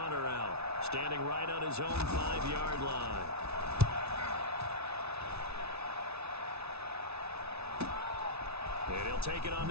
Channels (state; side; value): late; left; 0.80 ms